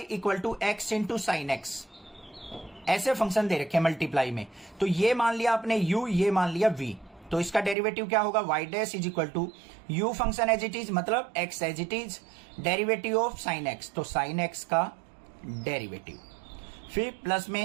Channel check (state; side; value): drops out; left; at 7.8 s